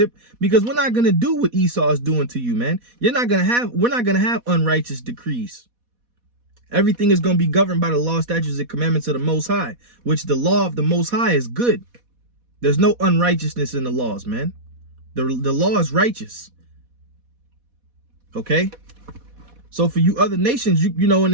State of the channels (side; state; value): left; late; 4.1 ms